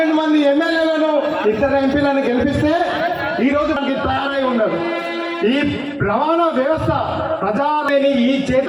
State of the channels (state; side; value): identical; both; correlation 1.00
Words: మంది ఎమ్మెల్యేలను 2 ఎంపీలను గెలిపిస్తే ఈరోజు మనకి తయారై ఉండదు. ఈ రవాణా వ్యవస్థ ప్రజాలేని ఈ